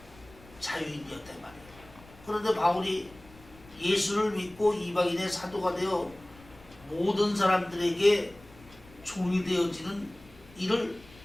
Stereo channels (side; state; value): left; noise; rumble, 23 dB below the sound